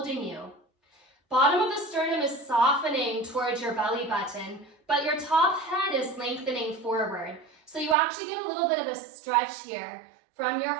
you. Bottom of the sternum is softening towards your belly button, but your top head is lengthening forward. So you actually get a little bit of a stretch here from your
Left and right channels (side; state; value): left; drops out; at 8.0 s